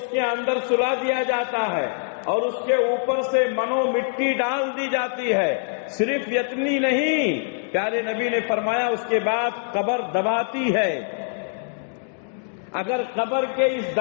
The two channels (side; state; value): right; silent; digital silence